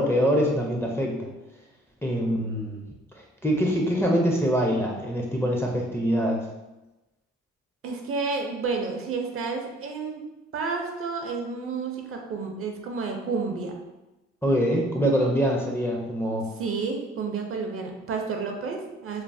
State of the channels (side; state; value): both; normal; correlation 0.59